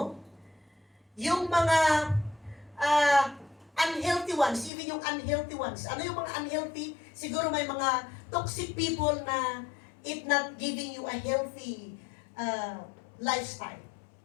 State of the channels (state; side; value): drops out; right; at 4.7 s